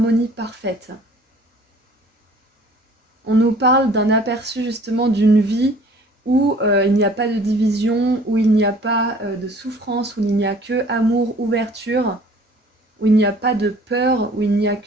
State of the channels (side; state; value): both; normal; correlation 0.52